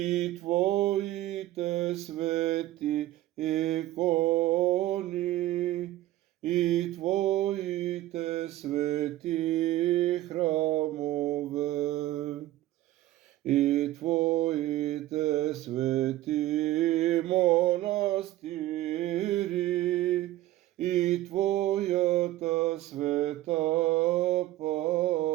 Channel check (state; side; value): quieter; left; 15.5 dB